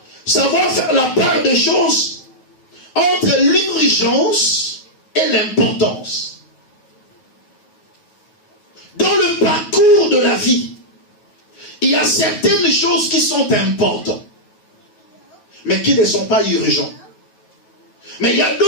Savoir faire la part des choses entre l'urgence et l'importance. Dans le parcours de la vie, il y a certaines choses qui sont importantes, mais qui ne sont pas urgentes. Mais il y a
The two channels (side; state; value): right; late; 9.3 ms